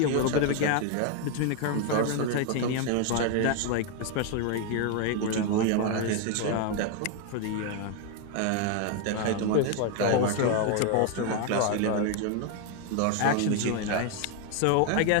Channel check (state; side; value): different; both; correlation 0.01